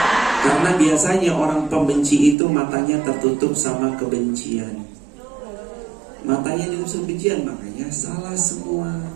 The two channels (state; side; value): drops out; left; at 2.4 s